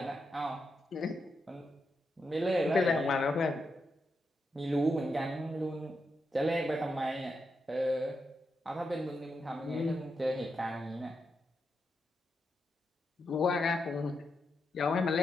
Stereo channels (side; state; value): both; normal; correlation 0.85